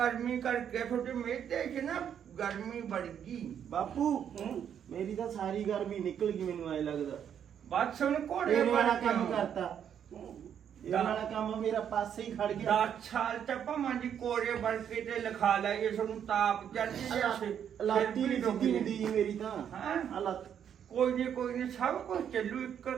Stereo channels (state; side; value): quieter; left; 8.8 dB